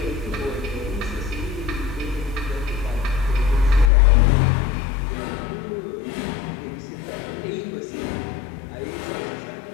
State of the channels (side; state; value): right; drops out; at 3.9 s